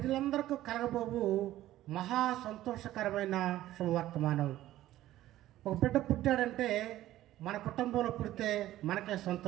కలగబోవు మహా సంతోషకరమైన శుభవర్తమానం. ఒక బిడ్డ పుట్టాడంటే మన కుటుంబంలో పుడితే మనకే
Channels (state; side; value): quieter; left; 14.4 dB